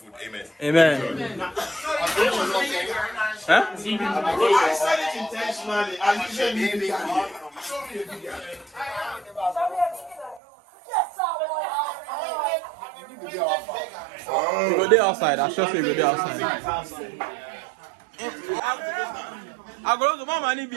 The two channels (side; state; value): left; drops out; at 10.4 s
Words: Amen. Amen. Huh? I said it intentionally. I usually be vegan. Show me a vegan. We go there outside. I trust me, we go there outside. I go to Mama